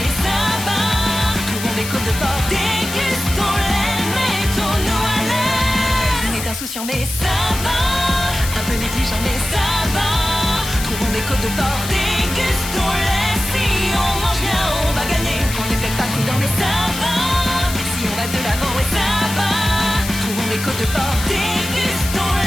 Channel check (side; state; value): left; noise; hiss, 8 dB below the sound